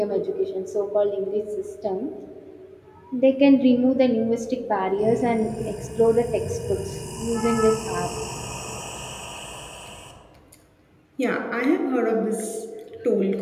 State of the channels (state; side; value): identical; both; correlation 1.00